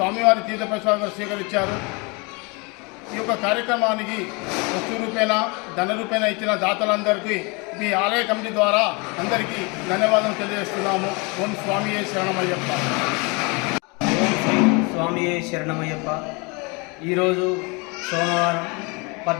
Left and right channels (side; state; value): right; quieter; 29.4 dB